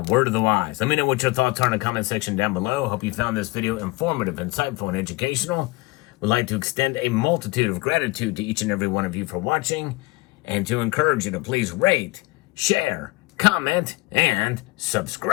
word of the wise. Let me know what your thoughts are in the comment section down below. Hope you found this video informative, insightful, and educational. Would like to extend a multitude of gratitude to each and every one of you for watching, and to encourage you to please rate, share, comment, and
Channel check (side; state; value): right; quieter; 23.0 dB